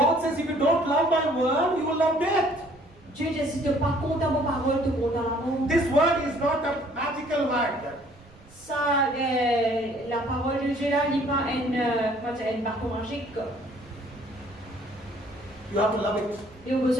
says if you don't love my word, you will love death. Dieu dit si tu pas contre ma parole, tu contre la mort. This word is not a magical word. Ça, la parole de Dieu là, n'est pas une bâton magique. You have to love it. Il y a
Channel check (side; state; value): right; noise; rumble, 25 dB below the sound